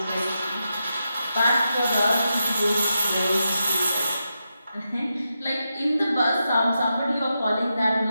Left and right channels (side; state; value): both; inverted; correlation -0.87